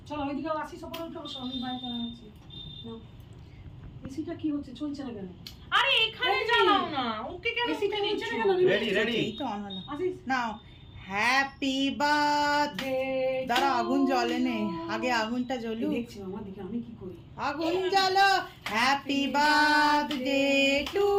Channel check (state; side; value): identical; both; correlation 1.00